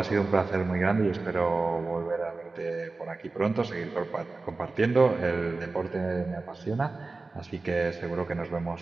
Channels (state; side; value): quieter; left; 3.6 dB